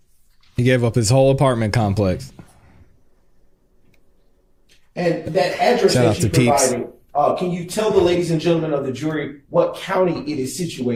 He gave up his whole apartment complex. And that address Shout out that you to Peeps. provided, can you tell the ladies and gentlemen of the jury what county it is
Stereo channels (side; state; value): both; identical; correlation 1.00